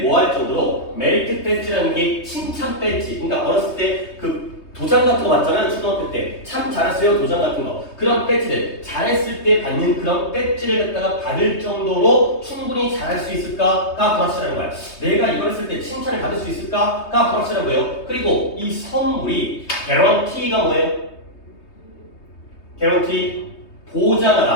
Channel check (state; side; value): late; right; 3.2 ms